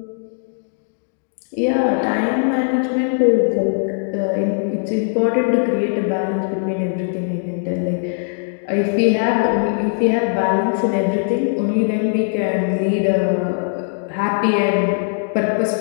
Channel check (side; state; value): right; silent; digital silence